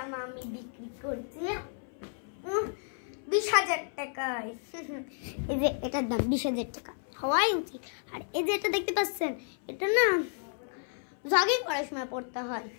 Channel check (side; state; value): right; silent; 57 dB below the other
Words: আমি বিক্রি করছি 20,000 টাকায়। এই যে এটার দাম 20,000 টাকা হওয়াই উচিত। আর এই যে এটা দেখতে পাচ্ছেন, এটা না জগিং করার সময় পড়তে হয়।